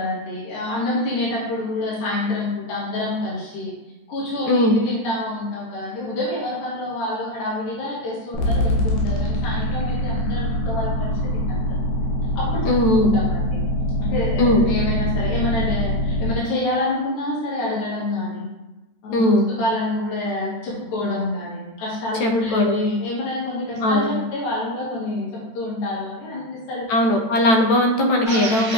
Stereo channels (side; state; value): right; late; 13 ms